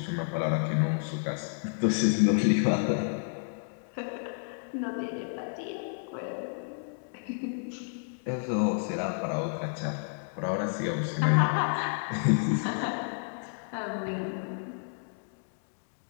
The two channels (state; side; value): silent; right; digital silence